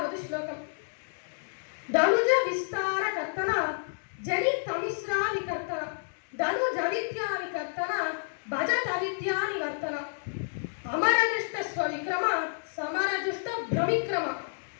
ஸ்லோகம். தனுஜ விஸ்தார கர்த்தனா ஜனி தமிஸ்ரா விகர்த்தனா தனுஜ வித்யா விகர்த்தனா பஜத வித்யா நிவர்த்தனா அமரஜுஷ்ட ஸ்வவிக்ரமா சமரஜுஷ்ட பிரமிக்ரமா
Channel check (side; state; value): right; silent; digital silence